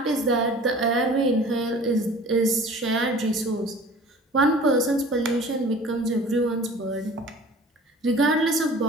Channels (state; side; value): normal; both; correlation 0.45